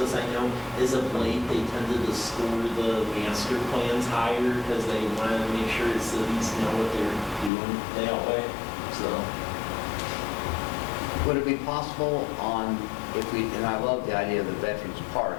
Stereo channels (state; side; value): drops out; right; at 7.5 s